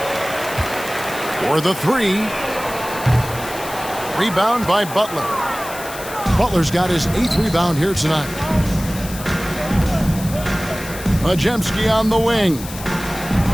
For the 3. Rebound by Butler. Butler's got his 8th rebound here tonight. Podziemski on the wing.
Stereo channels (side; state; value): left; noise; hiss, 13 dB below the sound